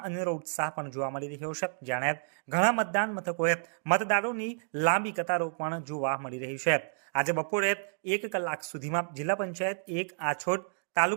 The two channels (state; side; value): silent; left; digital silence